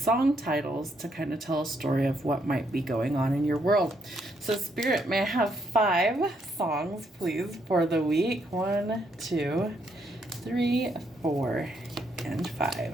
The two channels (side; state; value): both; normal; correlation 0.74